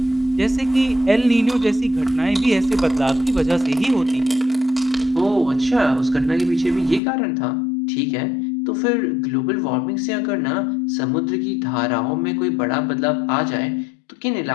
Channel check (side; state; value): right; drops out; at 7.0 s